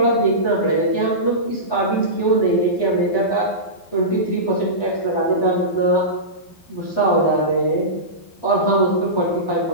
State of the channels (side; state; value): right; late; 12 ms